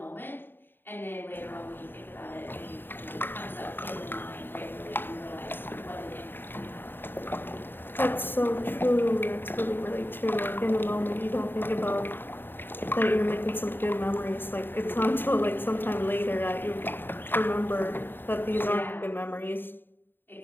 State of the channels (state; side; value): late; right; 0.096 ms